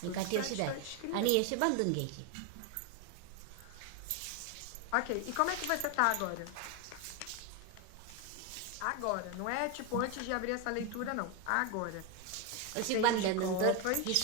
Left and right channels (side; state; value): both; different; correlation 0.01